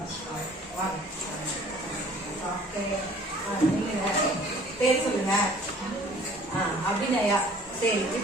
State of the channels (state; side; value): normal; both; correlation 0.52